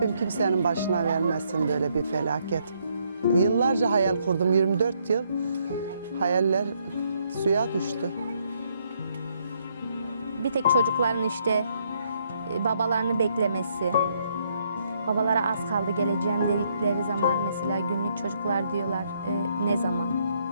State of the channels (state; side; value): inverted; both; correlation -0.72